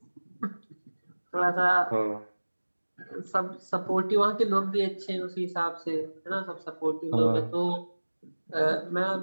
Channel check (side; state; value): both; inverted; correlation -1.00